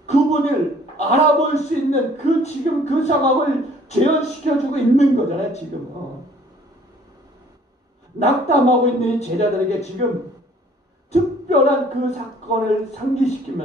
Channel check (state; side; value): normal; both; correlation 0.56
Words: 그분을 알아볼 수 있는 그 지금 그 상황을 재현시켜주고 있는 거잖아요. 지금 낙담하고 있는 이 제자들에게 지금 특별한 그 사건을